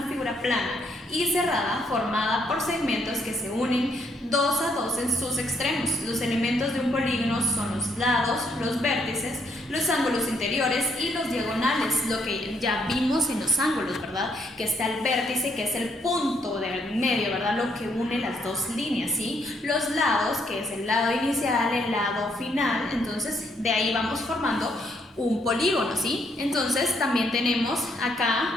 figura plana y cerrada formada por segmentos que se unen 2 a 2 en sus extremos. Los elementos de un polígono son los lados, los vértices, los ángulos interiores y los diagonales, lo que ya vimos en los ángulos, ¿verdad? Que está el vértice, que es el punto del medio, ¿verdad? Lo que une las dos líneas, ¿sí? Los lados, que es el lado inicial, el lado final. Entonces de ahí vamos formando un polígono, ¿sí? Entonces también tenemos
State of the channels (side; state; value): both; normal; correlation 0.72